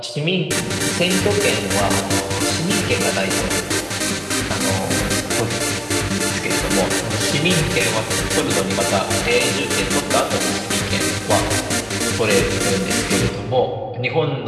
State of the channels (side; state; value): both; identical; correlation 1.00